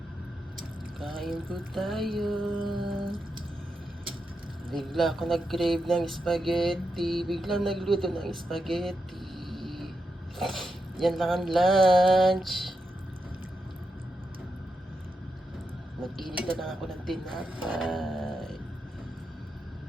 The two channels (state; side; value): normal; both; correlation 0.86